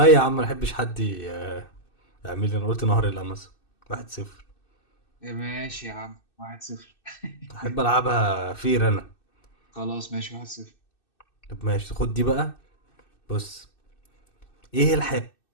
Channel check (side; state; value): right; late; 2.6 ms